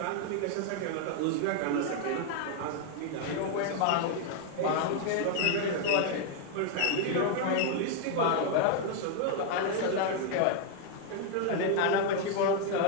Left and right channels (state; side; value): different; both; correlation 0.00